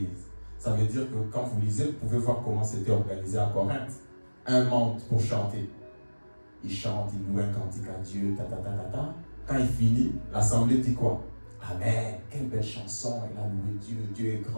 Ça veut dire que quand vous lisez, vous pouvez voir comment c'était organisé à Corinthe. Un monde pour chanter. Il chante, il loue un cantique à Dieu, Quand il finit, l'assemblée dit quoi? Amen, quelle belle chanson, il a loué Dieu, Dieu est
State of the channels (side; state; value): both; inverted; correlation -1.00